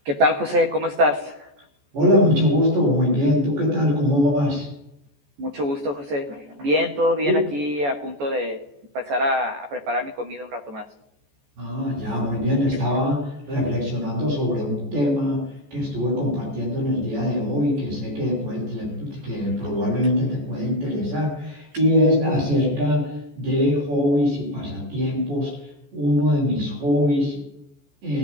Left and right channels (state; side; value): late; left; 14 ms